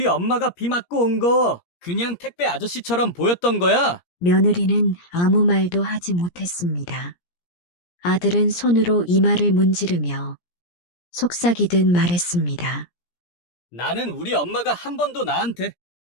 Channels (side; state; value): right; late; 17 ms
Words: 엄마가 비 맞고 온 거 그냥 택배 아저씨처럼 보였던 거야? 며느리는 아무 말도 하지 못했습니다. 아들은 손으로 이마를 문지르며 속삭이듯 말했습니다. 나는 우리 엄마가 한 번도 나한테